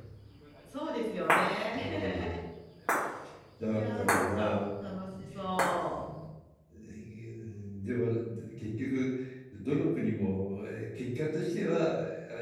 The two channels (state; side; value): identical; both; correlation 1.00